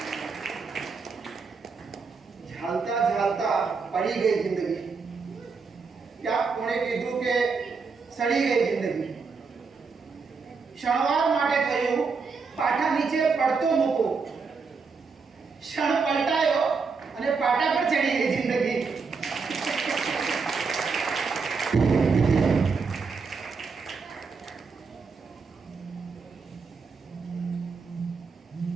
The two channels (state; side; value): quieter; left; 4.9 dB